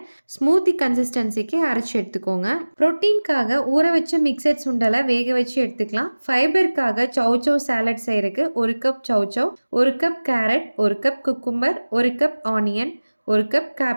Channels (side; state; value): both; inverted; correlation -1.00